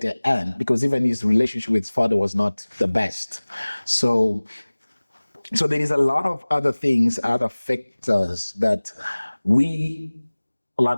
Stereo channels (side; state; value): both; inverted; correlation -1.00